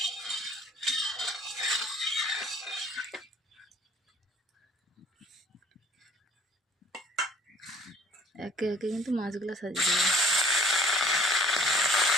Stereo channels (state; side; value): normal; both; correlation 0.54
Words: একে একে কিন্তু মাছগুলো সাজিয়ে দেবো।